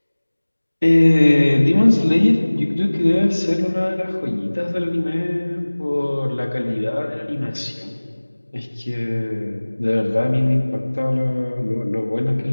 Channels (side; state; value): both; inverted; correlation -1.00